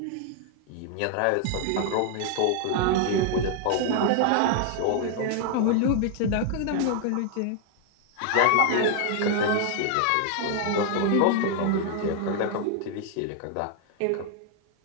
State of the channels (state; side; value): different; both; correlation 0.00